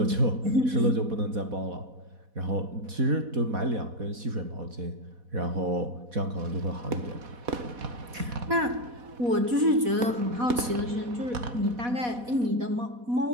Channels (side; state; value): left; late; 4.1 ms